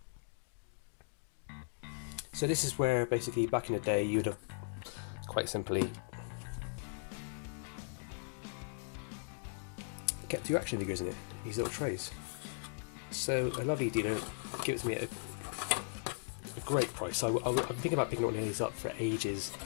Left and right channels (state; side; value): silent; right; digital silence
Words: So this is where basically back in the day you'd have quite simply kept your action figures in it, these little trays. So a lovely dealer gives me a great price. I've been thinking about picking one of these up for ages,